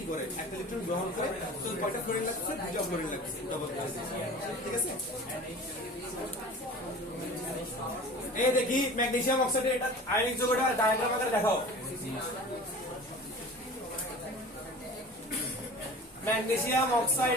করে, একটা ইলেকট্রন গ্রহণ করে, তো কয়টা ফ্লোরিন লাগছে, 2টা ফ্লোরিন লাগছে, ডবল, ঠিক আছে। এই দেখি ম্যাগনেসিয়াম অক্সাইডের এটা আয়নিক যৌগটা ডায়াগ্রাম আকারে দেখাও। ম্যাগনেসিয়াম অক্সাইড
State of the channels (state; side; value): normal; both; correlation 0.39